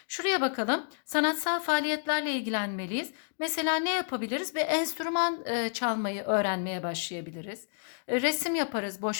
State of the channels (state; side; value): silent; right; digital silence